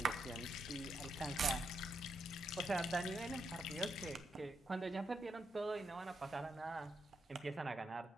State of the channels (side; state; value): both; normal; correlation 0.81